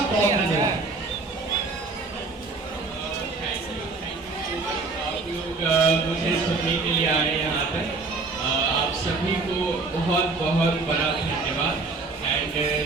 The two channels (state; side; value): quieter; left; 3.8 dB